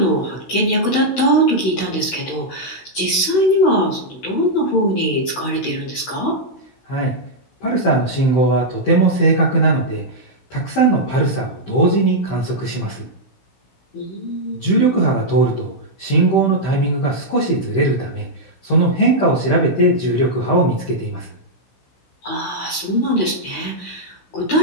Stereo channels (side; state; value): right; late; 16 ms